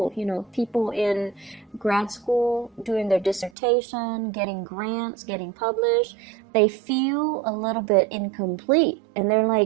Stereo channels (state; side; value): drops out; left; at 3.5 s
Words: You know, people in grad school doing their dissertation, getting grants, getting published, they feel a little bit incomplete. And they're